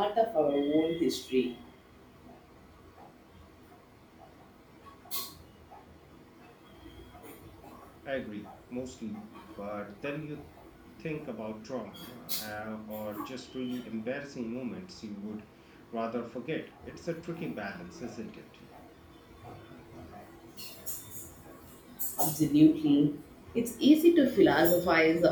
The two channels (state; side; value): identical; both; correlation 1.00